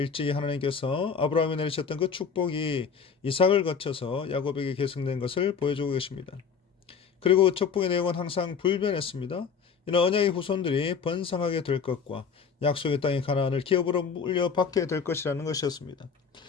하나님께서 아브라함에 내리셨던 그 축복이 이삭을 거쳐서 야곱에게 계승된 것을 보여주고 계십니다. 그리고 그 축복의 내용은 항상 불변했습니다. 이는 언약의 후손들이 번성하게 될 것과 약속의 땅의 가나안을 기업으로 물려받게 될 것이라는 것이었습니다.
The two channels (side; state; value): right; quieter; 6.1 dB